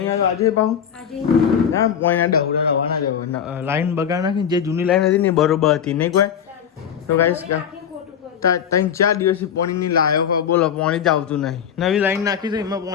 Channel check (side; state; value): right; quieter; 8.4 dB